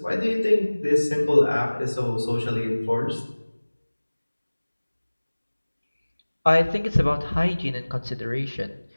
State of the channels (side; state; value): both; inverted; correlation -1.00